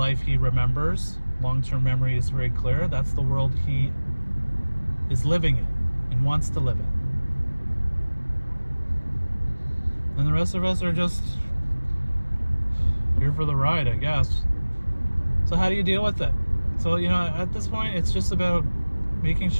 he remembers. Long-term memory is very clear. That's the world he is living in and wants to live in. And the rest of us are just here for the ride, I guess. So how do you deal with it? So, at this point, it's just about making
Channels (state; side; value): inverted; both; correlation -1.00